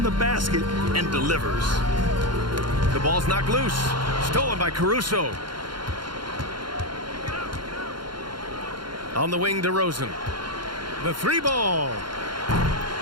the basket and delivers. The ball's knocked loose. Stolen by Caruso. On the wing, DeRozan. The 3 ball.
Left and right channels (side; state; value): left; late; 0.72 ms